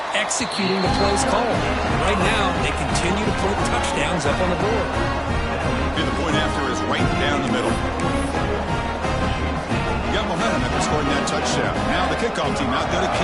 executing the plays called. And right now, they continue to put touchdowns up on the board. And the point after is right down the middle. Got momentum after scoring that touchdown. Now the kickoff team out there to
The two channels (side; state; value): both; identical; correlation 1.00